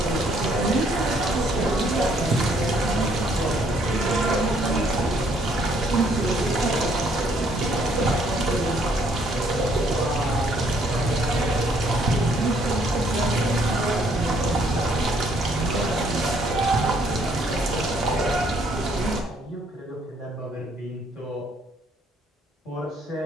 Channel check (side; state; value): both; normal; correlation 0.66